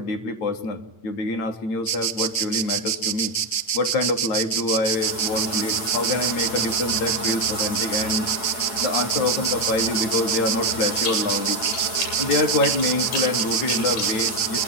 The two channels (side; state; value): right; late; 8.9 ms